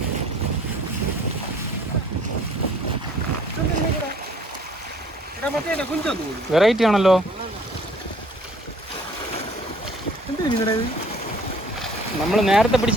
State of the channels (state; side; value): normal; both; correlation 0.56